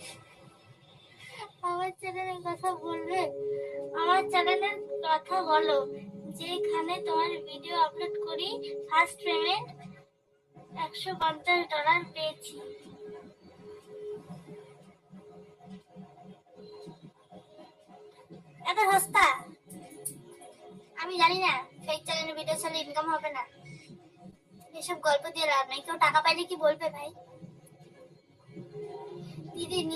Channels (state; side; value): identical; both; correlation 1.00